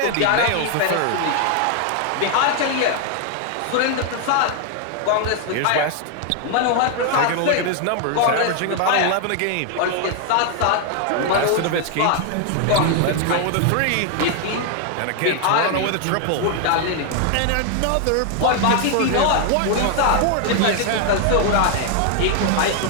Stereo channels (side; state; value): both; different; correlation 0.00